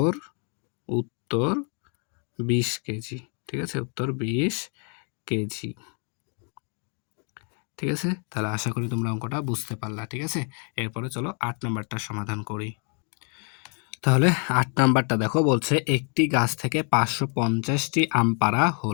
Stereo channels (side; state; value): right; quieter; 39.5 dB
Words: ২০ কেজি, ঠিক আছে? উত্তর ২০ কেজি, ঠিক আছে? তাহলে আশা করি তোমরা অঙ্কটা বুঝতে পারলা, ঠিক আছে? এরপরে চলো ৮ নাম্বারটা সমাধান করি। তাহলে ৮ নাম্বারটা দেখো, বলছে একটি গাছ থেকে ৫৫০টি আম পাড়া